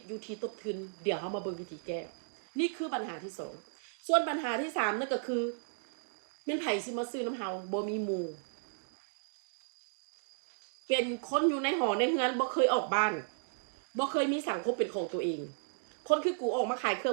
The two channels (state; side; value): silent; left; digital silence